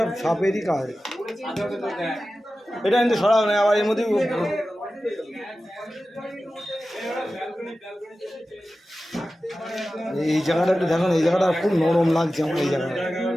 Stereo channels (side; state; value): both; normal; correlation 0.94